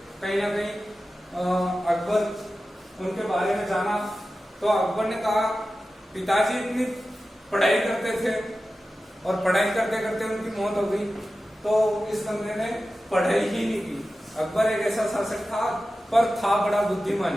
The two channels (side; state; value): both; normal; correlation 0.94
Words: कहीं ना कहीं अकबर उनके बारे में जाना, तो अकबर ने कहा पिताजी इतनी पढ़ाई करते थे और पढ़ाई करते करते उनकी मौत हो गई, तो इस बंदे ने पढ़ाई ही नहीं की। अकबर एक ऐसा शासक था, पर था बड़ा